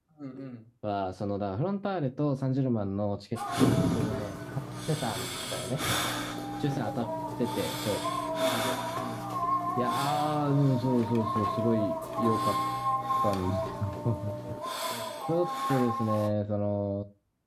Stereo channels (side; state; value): both; identical; correlation 1.00